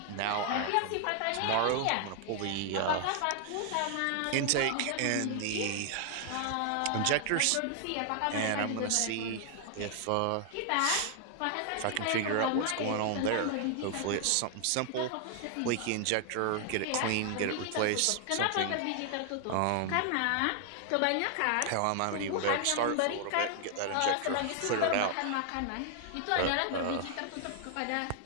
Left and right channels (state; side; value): different; both; correlation 0.00